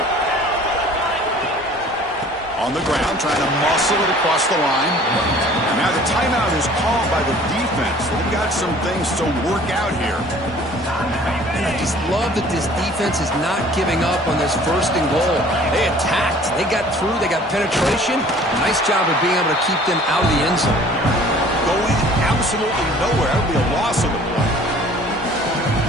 On the ground, trying to muscle it across the line. And now the timeout is called by the defense. They've got some things to work out here. And I just love that this defense is not giving up on this 1st and goal. They attacked. They got through. They got penetration. Nice job of being able to keep them out of the end zone. Going absolutely nowhere. That would be a loss of the play.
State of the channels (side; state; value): both; normal; correlation 0.51